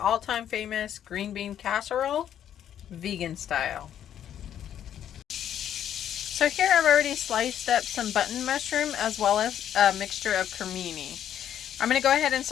famous green bean casserole, vegan style. So here I've already sliced up some button mushroom as well as a mixture of cremini. I'm going to go ahead and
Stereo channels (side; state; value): right; quieter; 10.1 dB